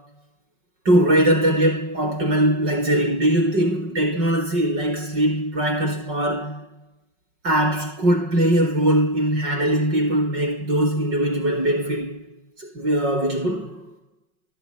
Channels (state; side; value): late; left; 5.4 ms